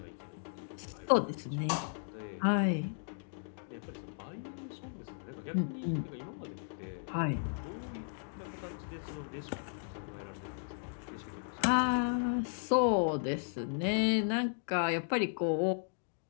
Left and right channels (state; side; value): silent; right; digital silence